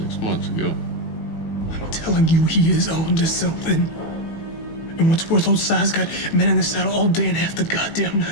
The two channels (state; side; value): late; right; 18 ms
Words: 6 months ago. I'm telling you, he is on to something. And what's worth, old Si's got men in the saddle all day and half the goddamn